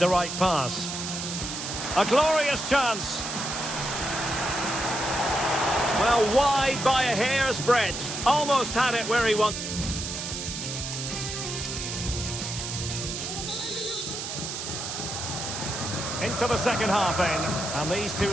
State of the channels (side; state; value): right; noise; hiss, 5 dB below the sound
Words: right pass? A glorious chance. Well, wide by a hair's breadth. Almost had it where he wanted. Into the second half then. And these